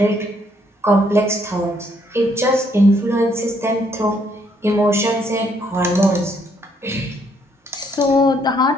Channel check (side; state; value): both; normal; correlation 0.69